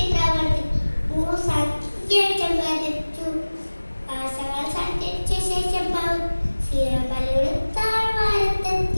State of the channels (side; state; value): both; inverted; correlation -1.00